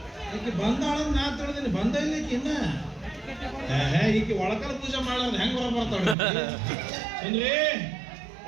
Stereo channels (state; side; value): drops out; left; at 6.2 s